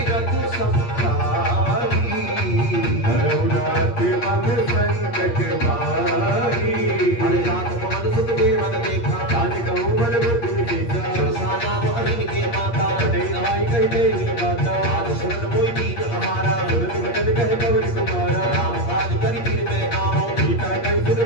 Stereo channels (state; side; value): late; right; 8.5 ms